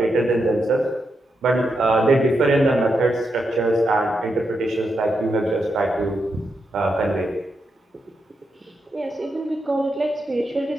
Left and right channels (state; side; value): normal; both; correlation 0.84